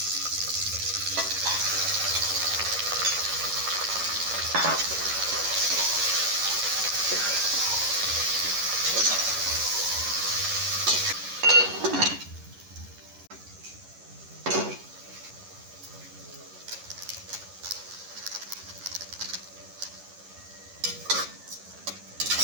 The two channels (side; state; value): left; late; 11 ms